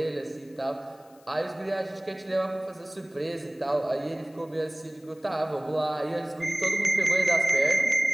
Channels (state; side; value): noise; left; hiss, 29 dB below the sound